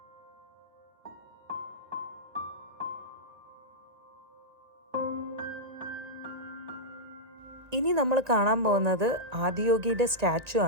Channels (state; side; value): late; left; 1.9 ms